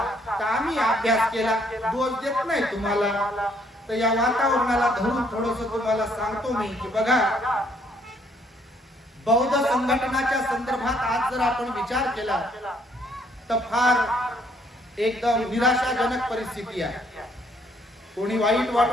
तर आम्ही अभ्यास केला, दोष देत नाही तुम्हाला. तर या वातावरणाला धरून थोडस तुम्हाला सांगतो मी की बघा, बौद्ध संघटनाच्या संदर्भात आज जर आपण विचार केला तर फार एकदम निराशाजनक परिस्थिती आहे. कोणी वाईट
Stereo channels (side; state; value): both; normal; correlation 0.67